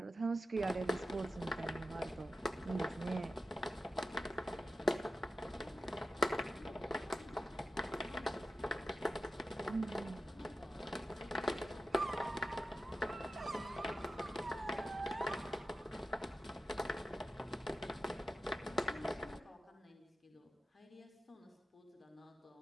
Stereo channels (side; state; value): both; normal; correlation 0.93